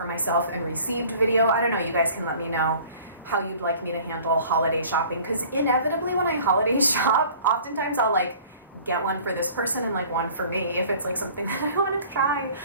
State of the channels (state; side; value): inverted; both; correlation -0.48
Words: myself and received video. I don't know, you guys can let me know how you'd like me to handle holiday shopping, because inevitably when I holiday shop, oftentimes I'll like get one for this person and like one for me if it's like something that I want to try.